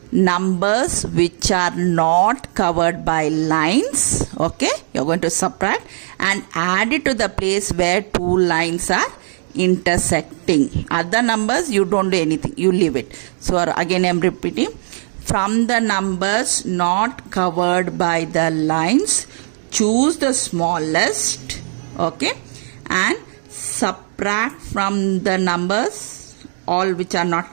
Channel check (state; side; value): silent; left; digital silence